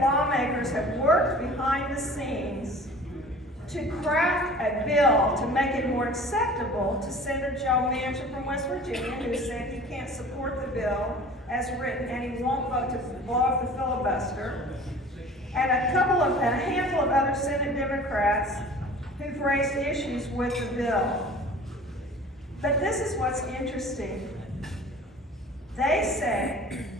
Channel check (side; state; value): both; normal; correlation 0.44